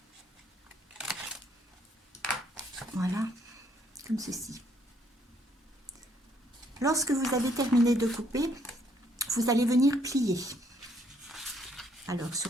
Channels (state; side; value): normal; both; correlation 0.68